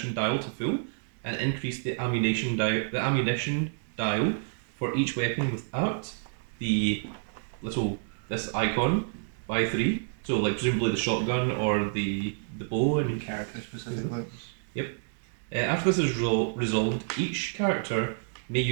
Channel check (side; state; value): left; silent; 59 dB below the other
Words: dial to full, and increase the ammunition dial for each weapon without the this icon by 3. So like presumably the shotgun or the bow and Character specifically. after this is resolved, each character may